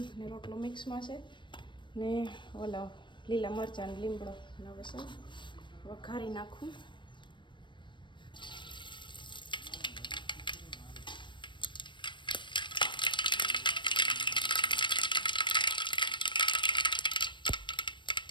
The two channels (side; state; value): right; late; 0.23 ms